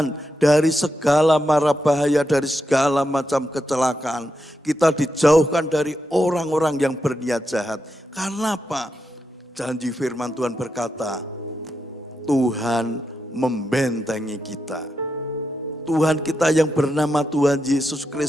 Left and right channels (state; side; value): normal; both; correlation 0.85